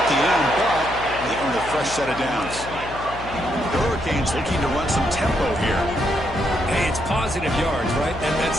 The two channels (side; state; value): left; noise; hum, 13 dB below the sound